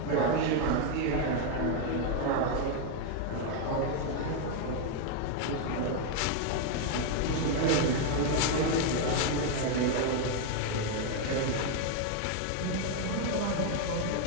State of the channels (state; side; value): different; both; correlation 0.01